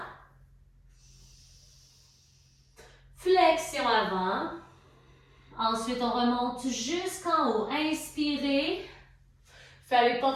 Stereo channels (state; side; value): identical; both; correlation 1.00